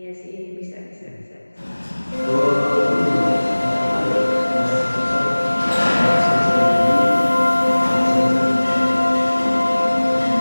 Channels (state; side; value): inverted; both; correlation -1.00